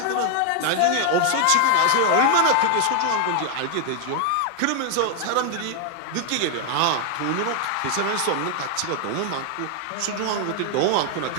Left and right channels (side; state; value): both; different; correlation 0.00